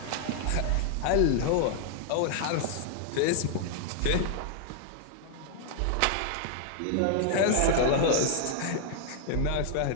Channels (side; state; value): both; different; correlation -0.01